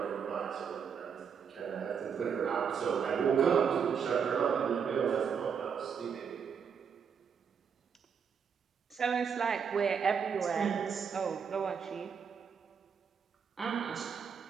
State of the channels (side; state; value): left; quieter; 6.9 dB